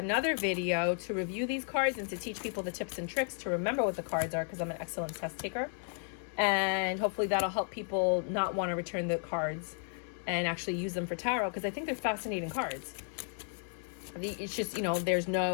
video to review these cards and to teach people the tips and tricks to remember what the cards are, because I'm an excellent test taker. And hopefully that'll help people not want to return the cards and actually use them for tarot, because I think they're fascinating cards. It's just, you know, there's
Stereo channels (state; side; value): silent; right; 55 dB below the other